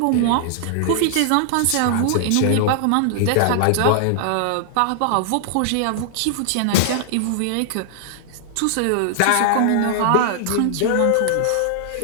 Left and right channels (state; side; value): different; both; correlation -0.01